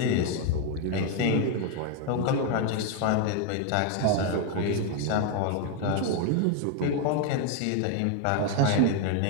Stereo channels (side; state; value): both; different; correlation 0.01